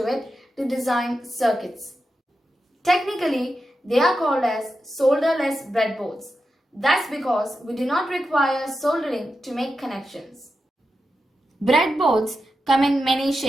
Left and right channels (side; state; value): both; normal; correlation 0.89